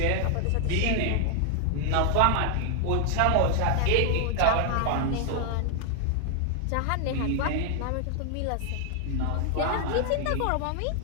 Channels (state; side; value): different; both; correlation 0.00